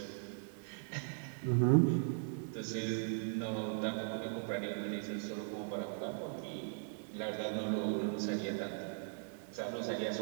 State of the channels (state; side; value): silent; left; digital silence